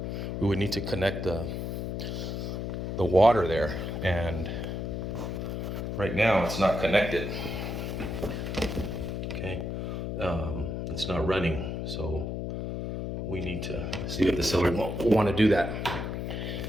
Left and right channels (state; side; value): noise; left; hum, 3 dB below the sound